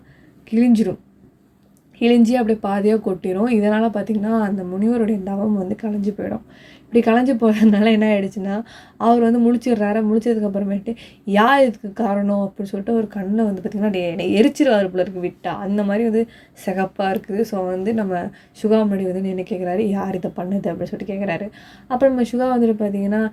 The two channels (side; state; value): both; identical; correlation 1.00